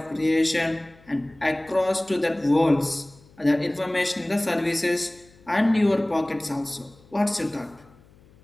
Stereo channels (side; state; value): left; noise; hum, 28 dB below the sound